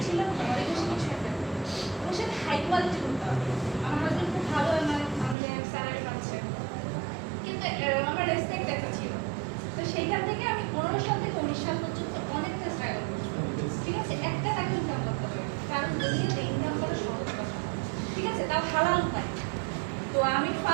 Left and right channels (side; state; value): left; drops out; at 5.4 s